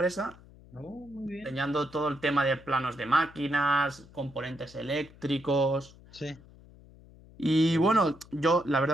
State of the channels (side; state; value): left; noise; hum, 23 dB below the sound